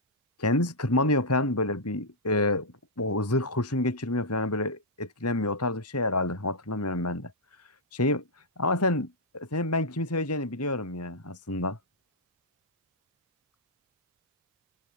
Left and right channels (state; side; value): normal; both; correlation -0.07